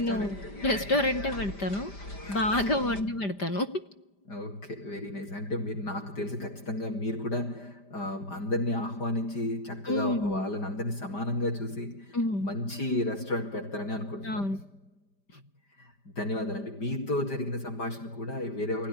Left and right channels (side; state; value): right; late; 5.1 ms